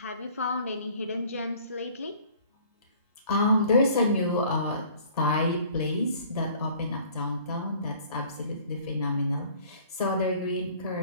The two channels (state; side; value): inverted; both; correlation -0.53